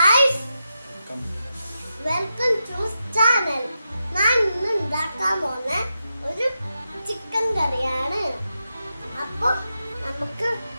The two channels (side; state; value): both; inverted; correlation -0.88